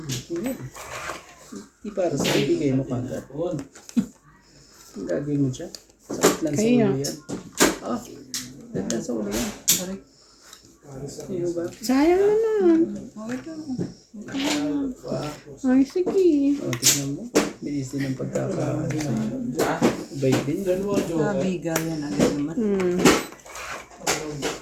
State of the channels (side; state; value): both; identical; correlation 1.00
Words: Sige. Di para sa ibigay mo kagad. Ang gagawin mo siya? Sakit lang sa Kaya. ulo yan. Ah, sakit lang sa ulo yan. Sino ba? Sayang naman. Ay, sige. O, tignan mo. Bilis din ang pagkakaano sa'yo. Bait din. Bigayan agad naman. Hmm.